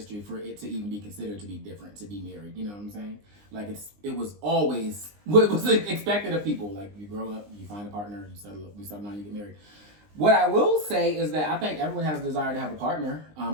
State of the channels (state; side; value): late; left; 20 ms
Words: for it to even be considered to be different, to be married. You know what I'm saying? Like it was always what was expected of people. Like you grow up, you find a partner, you settle down, you get married. What I will say is that I think everyone has a desire to have a partner.